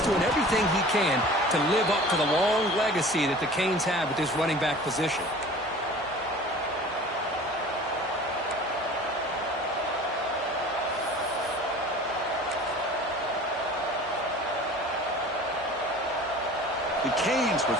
doing everything he can to live up to the long legacy that the Canes have with this running back position. The Canes with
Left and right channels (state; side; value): normal; both; correlation 0.43